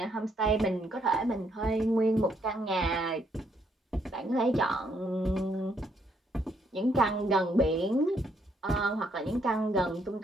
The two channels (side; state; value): both; normal; correlation 0.72